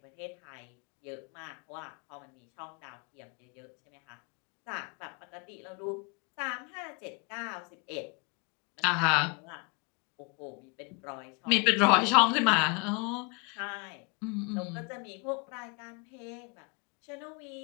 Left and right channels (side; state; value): right; quieter; 30.5 dB